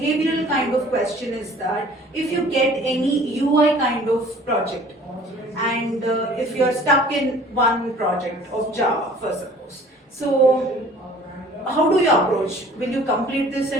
kind of question is that if you get any UI kind of project and if you are stuck in one project of Java, for suppose. So how do you approach? Will you complete this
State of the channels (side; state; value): both; normal; correlation 0.50